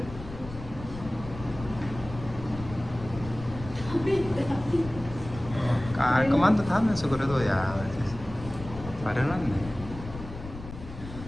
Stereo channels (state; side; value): noise; left; rumble, 12 dB below the sound